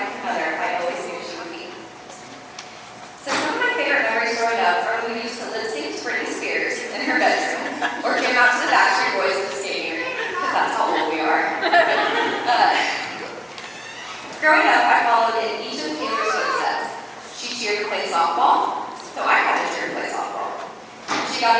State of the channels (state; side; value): identical; both; correlation 1.00